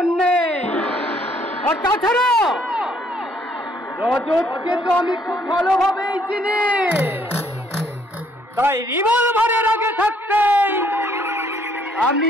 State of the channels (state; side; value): normal; both; correlation 0.66